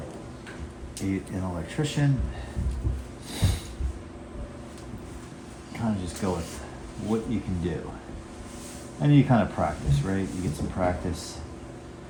an electrician. Kind of just go with what you can do, and you kind of practice, right? You get some practice.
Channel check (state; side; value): identical; both; correlation 1.00